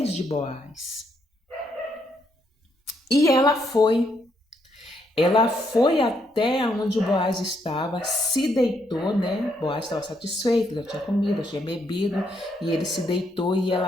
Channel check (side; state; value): both; normal; correlation 0.75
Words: de Boaz. E ela foi. Ela foi até onde o Boaz estava, se deitou, né? Boaz estava satisfeito, já tinha comido, já tinha bebido, e ele se deitou e